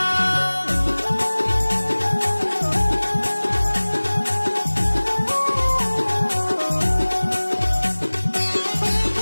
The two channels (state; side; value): inverted; both; correlation -1.00